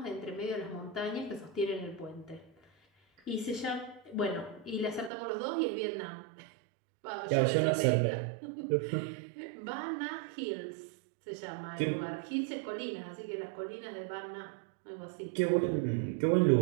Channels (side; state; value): left; drops out; at 5.1 s